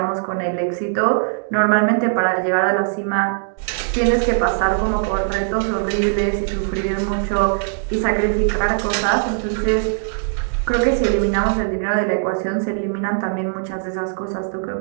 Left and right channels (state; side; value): silent; left; digital silence